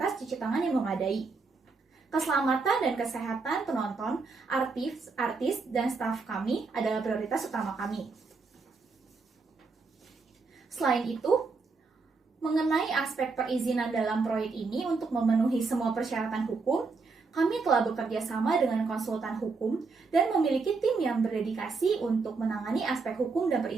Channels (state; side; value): quieter; left; 4.3 dB